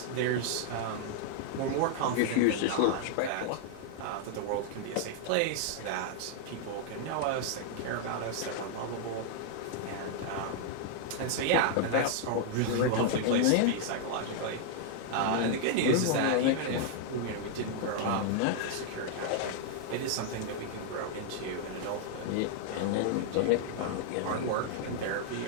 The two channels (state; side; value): different; both; correlation 0.00